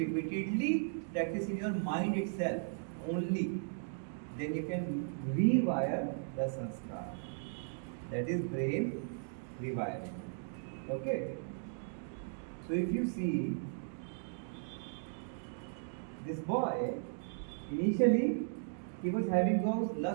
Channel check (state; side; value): silent; left; digital silence